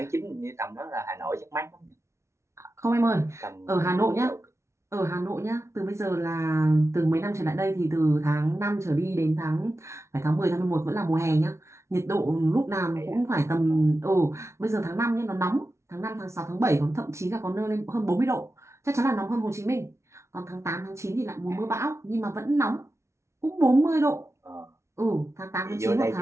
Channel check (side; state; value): left; late; 0.13 ms